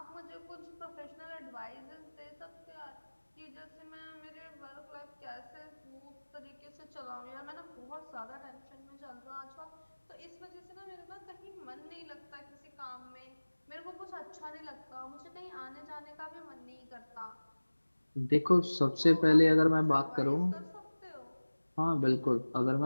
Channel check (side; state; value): both; inverted; correlation -1.00